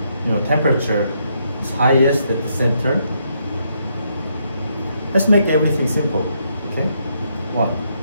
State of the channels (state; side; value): inverted; both; correlation -0.76